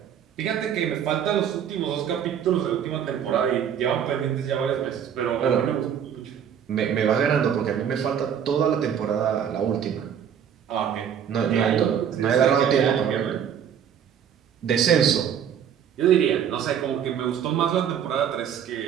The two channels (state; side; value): quieter; left; 8.7 dB